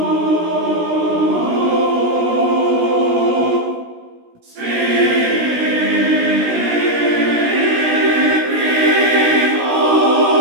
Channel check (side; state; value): left; late; 16 ms